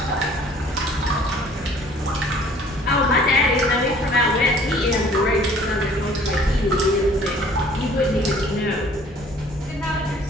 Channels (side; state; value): both; normal; correlation 0.53